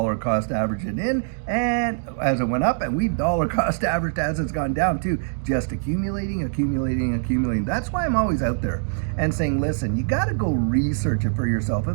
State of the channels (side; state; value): left; silent; digital silence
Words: cost averaged it in, and as it went up, and we've dollar cost averaged as it's gone down too, just accumulating. That's why I'm always out there and saying, listen, you got to go research it for yourself